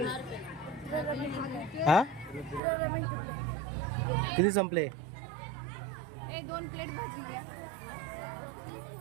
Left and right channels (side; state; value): left; drops out; at 2.6 s